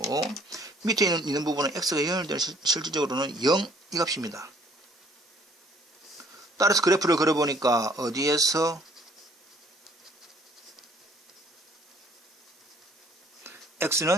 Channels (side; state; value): both; normal; correlation 0.59